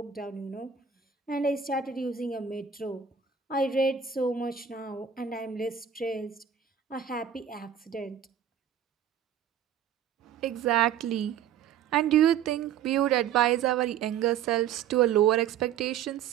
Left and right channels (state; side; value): quieter; left; 8.4 dB